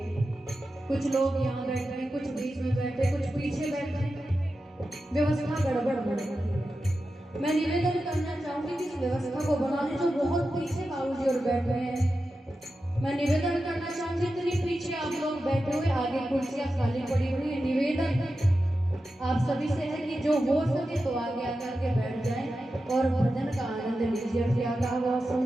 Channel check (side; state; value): both; normal; correlation 0.91